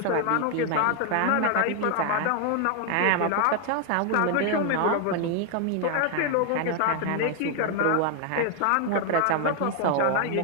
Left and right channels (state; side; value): different; both; correlation 0.00